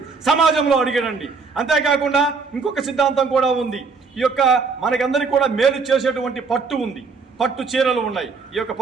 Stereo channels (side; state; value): left; quieter; 4.8 dB